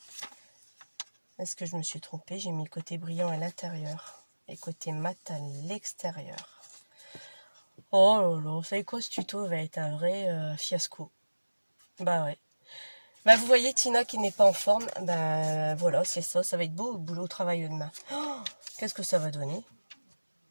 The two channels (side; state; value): both; inverted; correlation -1.00